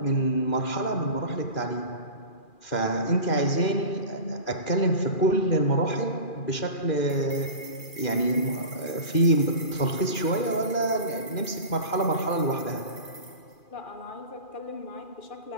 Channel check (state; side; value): late; right; 2.4 ms